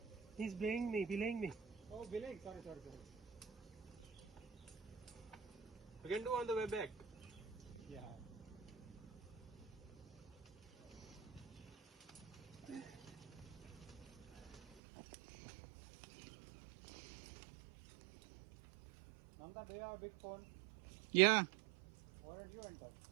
He's belaying me. Oh, belaying. Sorry. You can do on the way back. Yeah. Nanda, do you have a big phone? Yeah. Why don't you enter?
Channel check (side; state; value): left; drops out; at 14.6 s